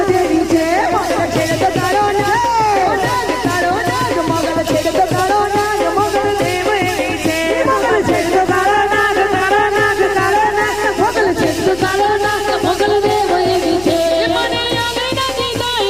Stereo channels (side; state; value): left; noise; hum, 17 dB below the sound